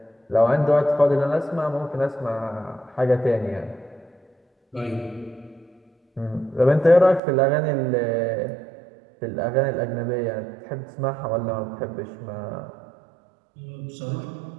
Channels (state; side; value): drops out; left; at 7.2 s